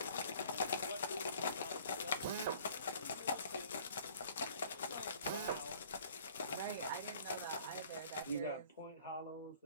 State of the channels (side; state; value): both; inverted; correlation -0.53